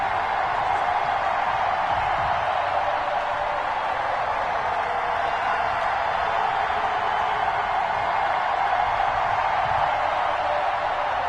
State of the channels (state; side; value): identical; both; correlation 1.00